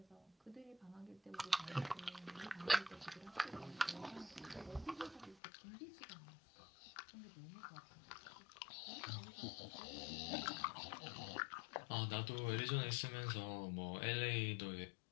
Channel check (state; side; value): drops out; right; at 5.4 s